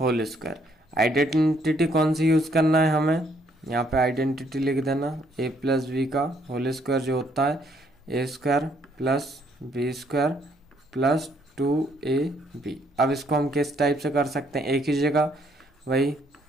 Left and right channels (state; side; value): normal; both; correlation 0.68